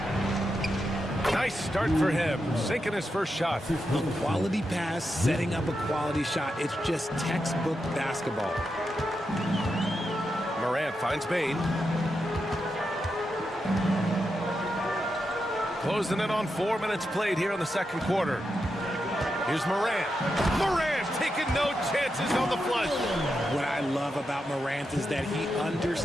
Nice start for him. Sinking his first shot. A quality pass, setting up a quality shot. It's just textbook basketball. Morant finds Bain. Closing in on 4 minutes played here in the second quarter. Here's Morant. Morant taking no chances on the flush. What I love about Morant is that he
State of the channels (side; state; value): both; normal; correlation 0.86